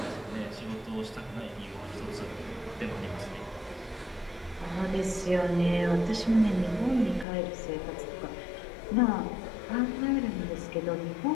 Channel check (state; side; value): drops out; right; at 7.2 s